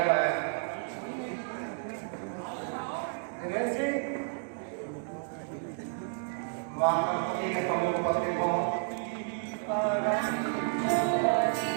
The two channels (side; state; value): left; silent; digital silence